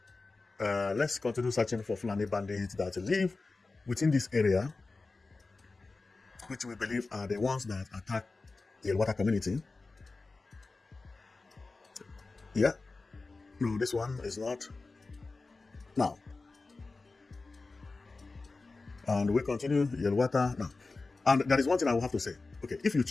let's continue searching for Fulani bandits that live within this area, which we believe are the ones that attack the Yelwata community. Yeah. No, this one is not. Now. And we continue Yelwata now. And there is one thing I will have to say. Okay, if you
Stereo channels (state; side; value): quieter; right; 3.7 dB